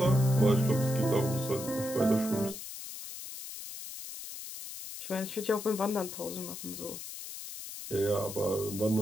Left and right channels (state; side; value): noise; left; hiss, 10 dB below the sound